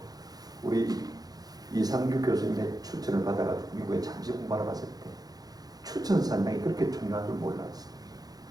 우리 이상규 교수님의 추천을 받아가 미국에 잠시 공부하러 갔을 때 추천 산당이 그렇게 중요한 줄 몰랐어요.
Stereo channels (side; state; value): left; late; 0.19 ms